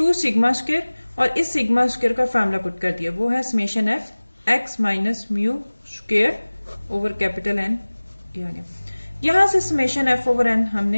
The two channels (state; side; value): inverted; both; correlation -1.00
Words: सिग्मा स्क्वायर और इस सिग्मा स्क्वायर का फार्मूला पुट कर दिया, वो है summation F x minus mu square over capital n. यहां से समेशन एफ ओवर एन